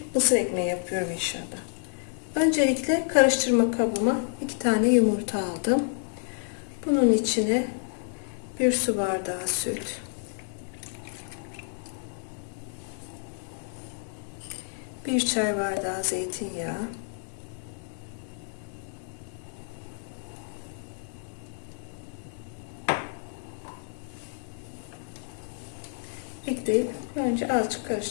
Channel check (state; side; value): silent; right; digital silence